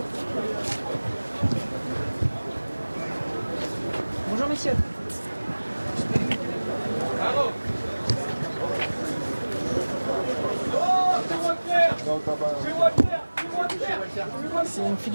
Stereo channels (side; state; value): both; inverted; correlation -1.00